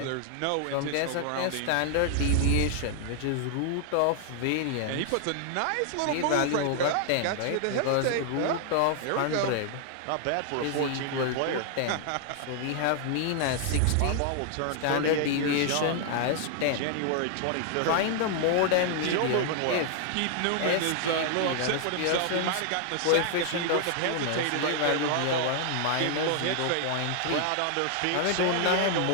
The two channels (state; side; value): different; both; correlation 0.00